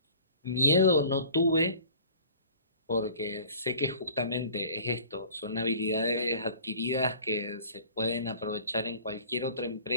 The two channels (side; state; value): both; inverted; correlation -0.47